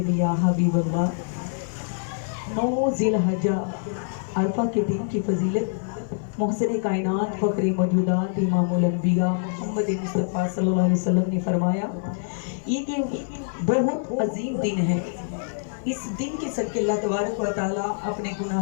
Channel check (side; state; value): right; silent; 55 dB below the other